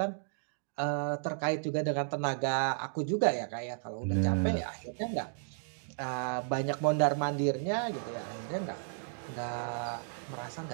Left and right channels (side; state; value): left; silent; digital silence